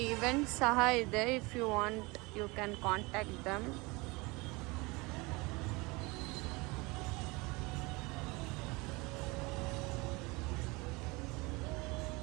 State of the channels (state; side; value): quieter; left; 25.1 dB